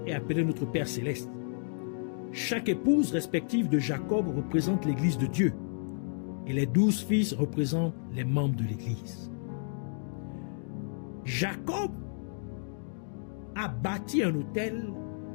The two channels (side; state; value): right; silent; digital silence